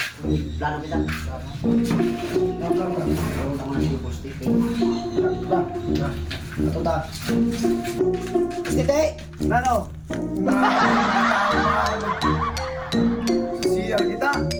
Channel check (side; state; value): both; identical; correlation 1.00